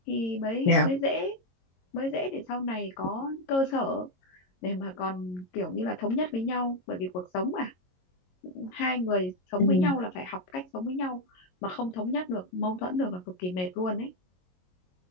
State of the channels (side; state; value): right; late; 22 ms